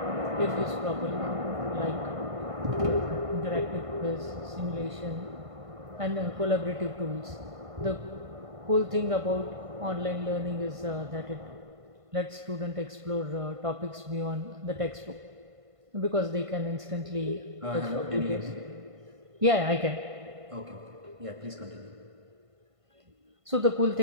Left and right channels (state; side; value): late; left; 1.5 ms